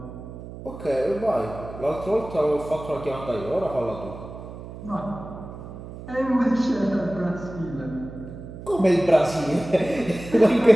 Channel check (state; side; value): noise; right; hum, 13 dB below the sound